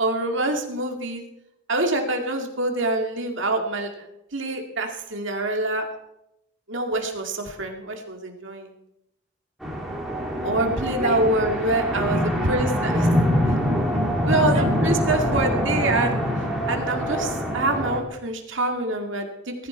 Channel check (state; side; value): normal; both; correlation 0.26